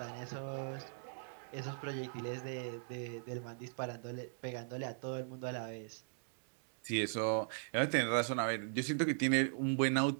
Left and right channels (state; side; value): silent; left; digital silence